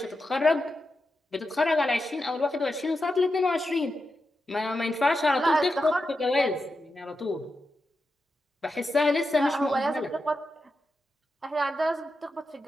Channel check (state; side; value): normal; both; correlation 0.88